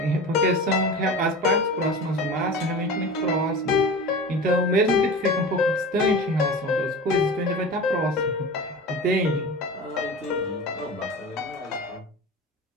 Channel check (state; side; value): normal; both; correlation 0.33